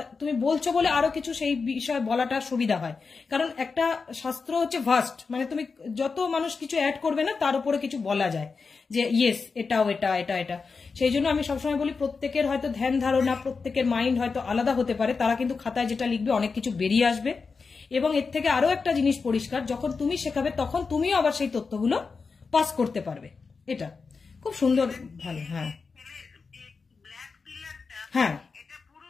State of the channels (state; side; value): quieter; right; 4.8 dB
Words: তুমি বলছো বলে আরো কিছু সেই বিষয়ে বলাটা সুবিধা হয়। কারণ একটা শাস্ত্র হচ্ছে ভাস্ট, মানে তুমি যত মানুষ কিছু অ্যাড করবে না তার উপরে কিছু বলা যায় যে ইয়েস এটাও এটা এটা এটা। সেই জন্য আমি সবসময় বলি প্রত্যেকের হয়তো ধ্যান ধারণা, প্রত্যেকের মাইন্ড হয়তো আলাদা হতে পারে, তারা কিন্তু খাতায় যেটা লিখবে অনেক কিছু বেরিয়ে আসবে। এবং এর থেকে আরো একটা জিনিস পরিষ্কার, যখন তুমি শেখাবে তখন তুমিও আবার সেই তথ্যগুলো পাস করতে পারবে। এটা খুব সুন্দর, ভালো। হ্যাঁ হ্যাঁ,